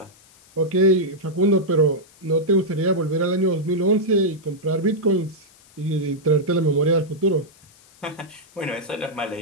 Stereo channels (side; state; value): left; noise; hiss, 28 dB below the sound